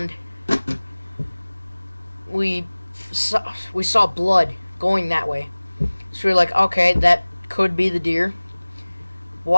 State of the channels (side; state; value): both; inverted; correlation -1.00